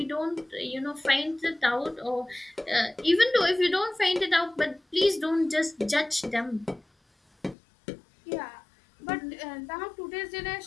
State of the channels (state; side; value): drops out; right; at 7.6 s